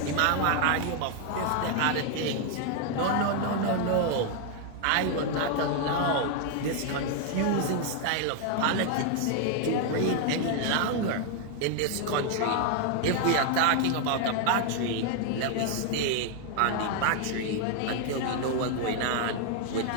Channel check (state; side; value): different; both; correlation 0.00